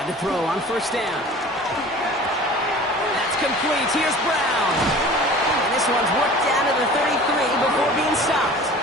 to throw on 1st down. That's complete. Here's Brown. And this one's worked down to the 33 before being stopped.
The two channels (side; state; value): both; normal; correlation 0.42